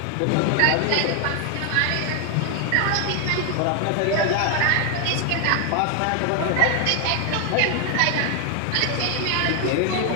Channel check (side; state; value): both; different; correlation 0.00